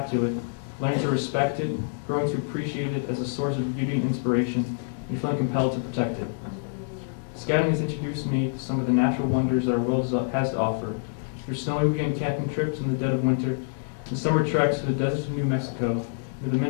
to it, learning to respect it, growing to appreciate it as a source of beauty and inspiration, and feeling compelled to protect it. Scouting has introduced me to some of the natural wonders that our world has to offer, through snowy weekend camping trips in the dead of winter, and summer treks to the deserts of New Mexico, to the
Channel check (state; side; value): silent; right; digital silence